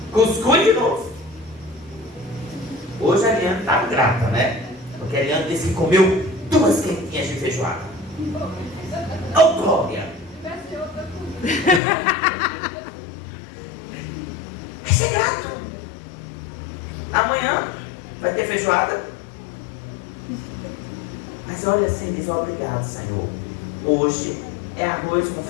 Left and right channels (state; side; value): drops out; right; at 11.8 s